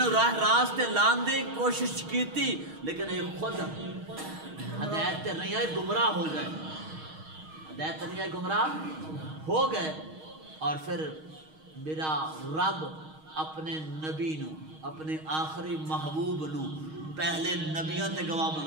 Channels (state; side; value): late; left; 6.4 ms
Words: راہ راستے لان دی کوشش کی تھی، لیکن یہ خود ہدایت تے نہیں آئے، گمراہ ہو گئے، ہدایت تے نہیں آئے، گمراہ ہو گئے۔ اور پھر میرا رب اپنے نبی نو، اپنے آخری محبوب نو پہلے نبیوں تے گواہ